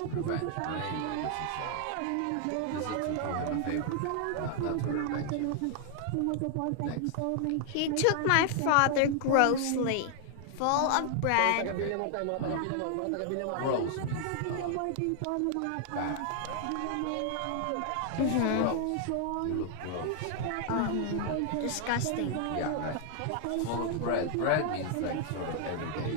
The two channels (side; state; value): both; different; correlation 0.00